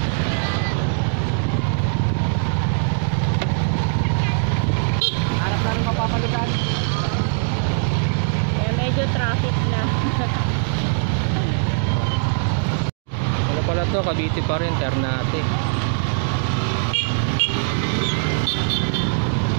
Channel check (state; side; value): silent; left; 63 dB below the other